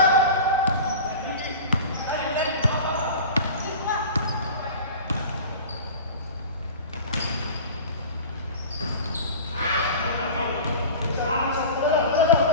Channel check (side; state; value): both; inverted; correlation -0.36